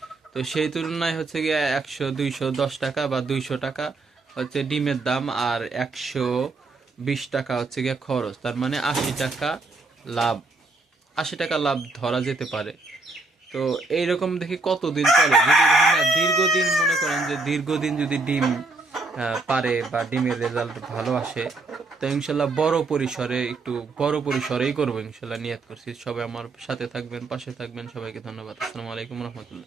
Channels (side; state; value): left; quieter; 3.4 dB